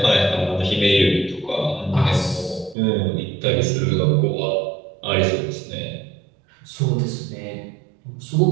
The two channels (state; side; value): drops out; left; at 2.8 s